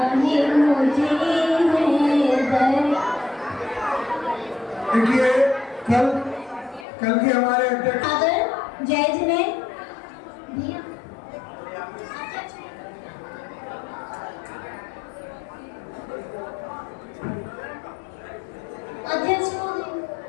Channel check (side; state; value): right; drops out; at 6.9 s